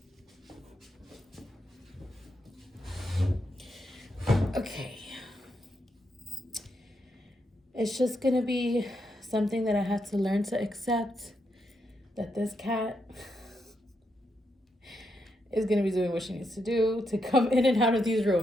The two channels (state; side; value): normal; both; correlation 0.81